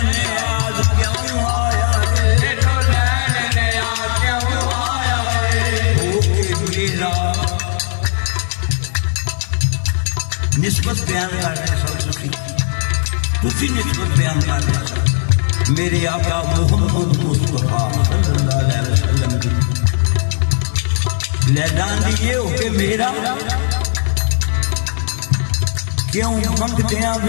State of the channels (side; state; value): right; silent; digital silence